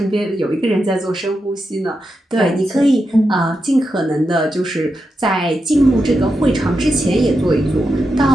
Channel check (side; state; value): both; normal; correlation 0.87